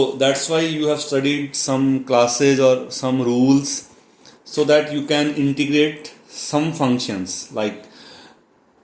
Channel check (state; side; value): identical; both; correlation 1.00